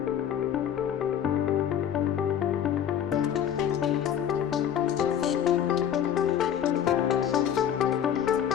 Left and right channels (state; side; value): quieter; right; 9.4 dB